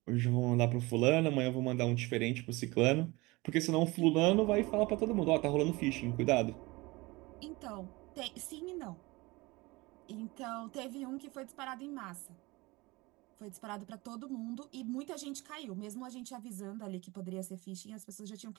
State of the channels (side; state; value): left; quieter; 23.0 dB